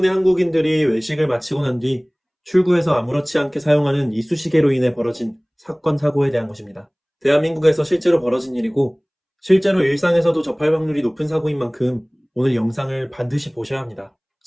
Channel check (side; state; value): both; identical; correlation 1.00